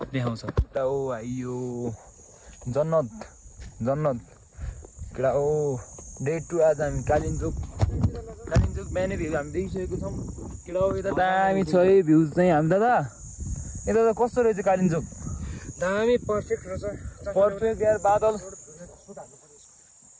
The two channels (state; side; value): identical; both; correlation 1.00